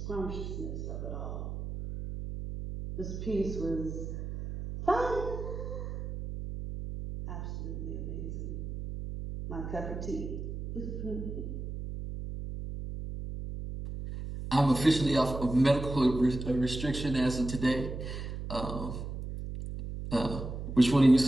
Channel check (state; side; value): noise; right; hum, 6 dB below the sound